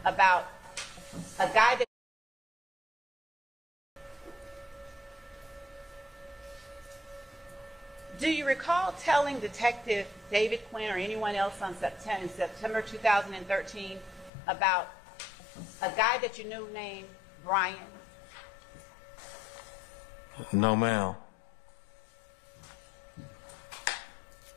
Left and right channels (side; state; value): right; drops out; at 14.3 s